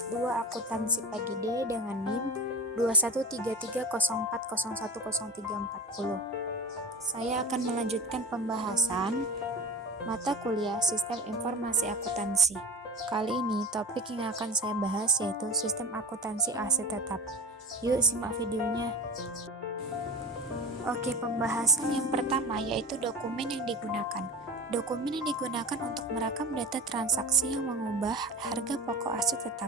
2 Akuntansi Pagi D dengan NIM 213304010340. Saya akan melanjutkan pembahasan mata kuliah Sistem Informasi Akuntansi. Kali ini topik yang akan saya bahas yaitu Sistem Akuntansi Aset Tetap. Yuk simak videonya. Oke, pembahasan yang pertama yaitu dokumen yang digunakan. Dokumen yang digunakan untuk merekam data transaksi yang mengubah harga pokok aset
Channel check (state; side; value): normal; both; correlation 0.31